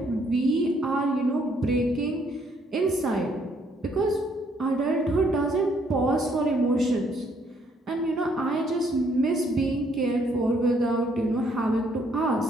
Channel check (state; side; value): normal; both; correlation 0.68